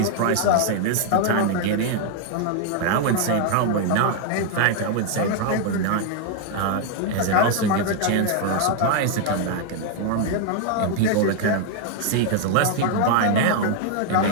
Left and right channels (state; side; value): different; both; correlation 0.00